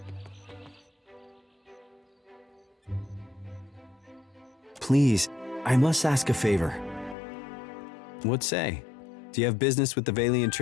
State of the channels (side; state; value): right; drops out; at 7.2 s